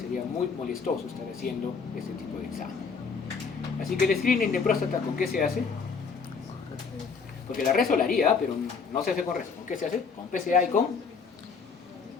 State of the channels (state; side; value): quieter; right; 5.4 dB